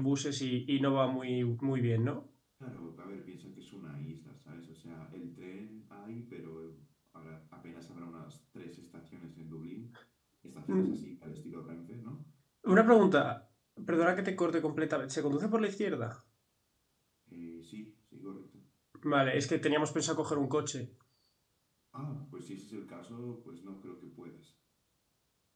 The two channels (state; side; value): identical; both; correlation 1.00